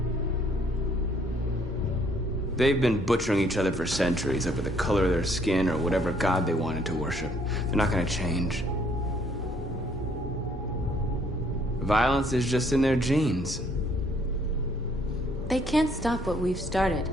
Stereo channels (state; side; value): normal; both; correlation 0.64